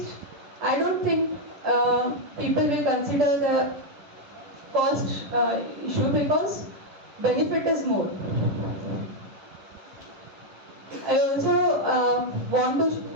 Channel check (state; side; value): late; left; 11 ms